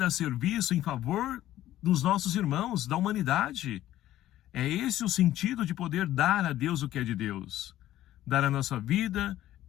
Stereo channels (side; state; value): right; quieter; 13.7 dB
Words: a serviço em favor dos nossos irmãos, da humanidade. É esse o sentido de poder dar a Deus o que é de Deus. Dar a nossa vida